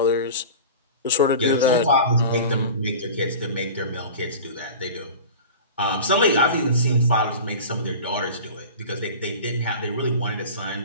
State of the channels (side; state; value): both; inverted; correlation -0.35